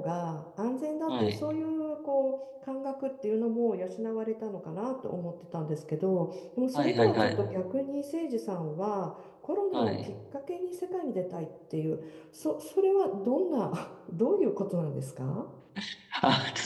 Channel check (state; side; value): identical; both; correlation 1.00